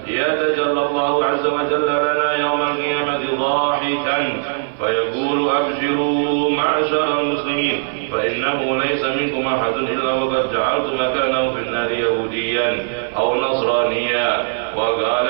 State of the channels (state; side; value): silent; left; 56 dB below the other